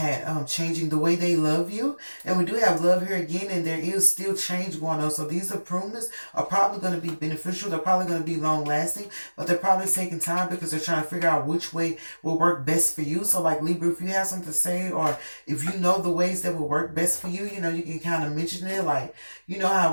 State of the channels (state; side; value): inverted; both; correlation -1.00